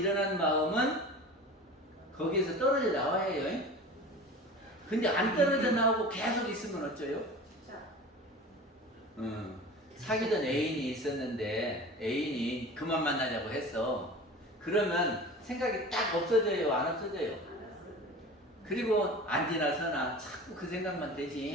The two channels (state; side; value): normal; both; correlation 0.37